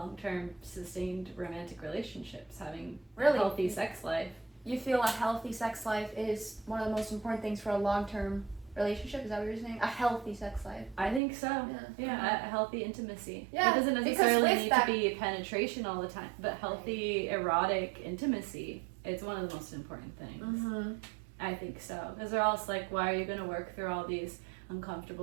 sustained romantic relationships, having a healthy sex life. you feel a healthy sex life is one of the most important things for a long-term relationship? Is that what you're saying? A healthy sex life. I think so. Yeah. A healthy intimacy. Yeah, It doesn't because necessarily with need that- to be penetration all the time, but healthy erotic intimacy. It's one of the most important things. I think so. Because they're also like, why are you going to work through all these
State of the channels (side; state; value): left; drops out; at 11.2 s